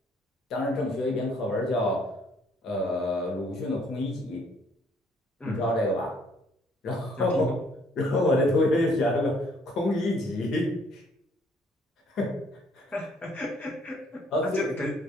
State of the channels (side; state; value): both; normal; correlation 0.63